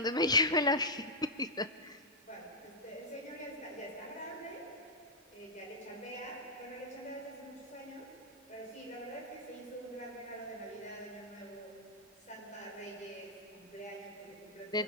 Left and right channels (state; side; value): normal; both; correlation -0.08